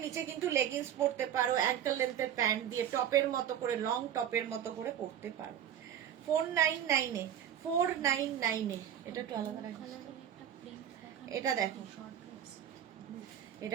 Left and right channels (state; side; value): quieter; left; 10.0 dB